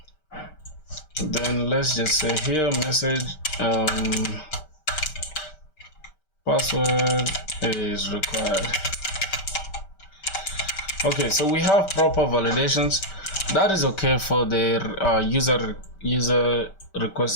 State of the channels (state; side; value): late; right; 5.2 ms